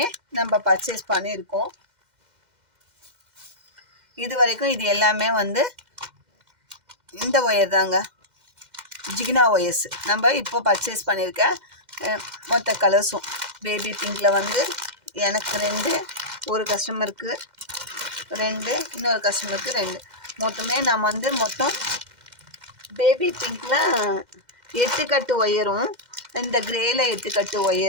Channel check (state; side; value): late; left; 2.1 ms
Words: நம்ம பர்ச்சேஸ் பண்ணியிருக்கோம். இது வரைக்கும் இது எல்லாமே வந்து இந்த ஒயர் தாங்க, ஜிகினா ஒயர்ஸ். நம்ம இப்போ பர்ச்சேஸ் பண்ணியிருக்க மொத்த கலர்ஸும் பேபி பிங்கில் வந்து எனக்கு 2, ஒரு கஸ்டமருக்கு 2, இன்னொரு கஸ்டமருக்கு 2, மொத்தமே நம்ம வந்து மொத்தம் பேபி பிங்கில் 8 கட்டு ஒயரும், இந்த கிரேயில் 8 கட்டு